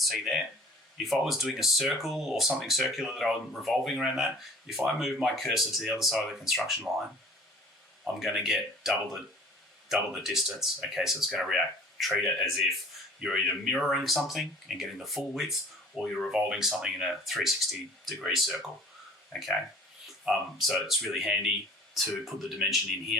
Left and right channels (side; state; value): both; normal; correlation 0.49